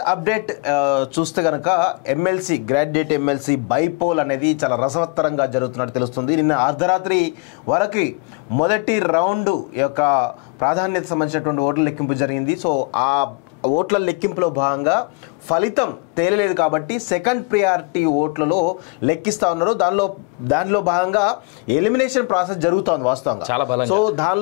అప్డేట్ చూస్తే గనక ఎమ్మెల్సీ గ్రాడ్యుయేట్ ఎమ్మెల్సీ బైపోల్ అనేది చాలా రసవత్తరంగా జరుగుతున్నట్టు తెలుస్తుంది. నిన్న అర్ధరాత్రి వరకు మొదటి రౌండ్ యొక్క ప్రాధాన్యత సంబంధించినటువంటి ఓట్ల లెక్కింపు జరిగింది. సో ఆ ఓట్ల లెక్కింపులో భాగంగా ఫలితం తేలలేదు కాబట్టి సెకండ్ ప్రియారిటీ ఓట్లలో లెక్కిస్తా ఉన్నారు. దానిలో భాగంగా ఎలిమినేషన్ ప్రాసెస్ జరుగుతోంది వాస్తవంగా. సో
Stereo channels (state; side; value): quieter; right; 30.5 dB